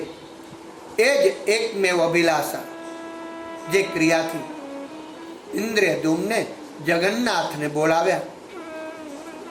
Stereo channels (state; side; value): identical; both; correlation 1.00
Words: એ જ એકમેવ અભિલાષા. જે ક્રિયાથી ઇન્દ્રદ્યુમ્ને જગન્નાથને બોલાવ્યા,